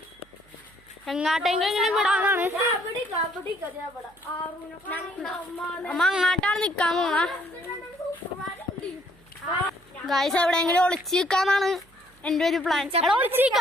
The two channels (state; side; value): noise; right; hum, 30 dB below the sound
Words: എങ്ങാട്ടെങ്കിലും വിടാനാണ്. അമ്മ അങ്ങാട്ടാണ് നിക്കാൻ പോണ ഗൈസ്. എവിടെയെങ്കിലും ഒളിച്ചു നിൽക്കാന്നാണ് എന്റെ ഒരു പ്ലാൻ. ഒളിച്ചു